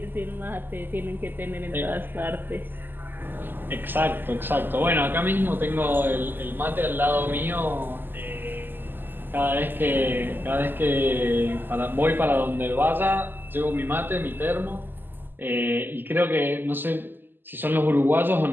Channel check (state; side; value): late; left; 0.093 ms